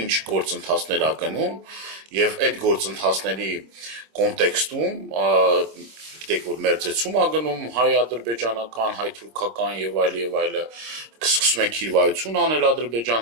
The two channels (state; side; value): late; left; 26 ms